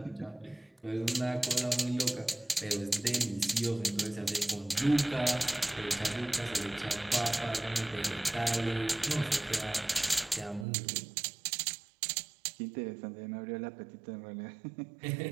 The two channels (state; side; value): drops out; left; at 10.7 s